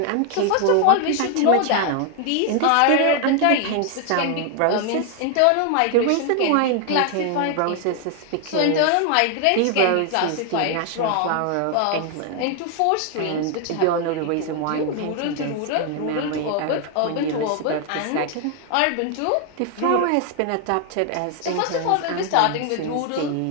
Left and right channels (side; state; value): both; different; correlation 0.00